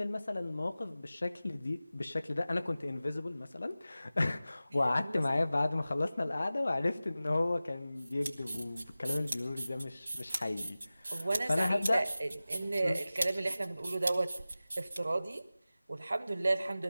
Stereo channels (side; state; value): both; inverted; correlation -0.96